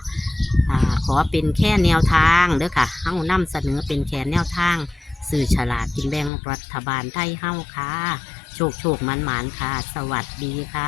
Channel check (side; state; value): right; drops out; at 6.3 s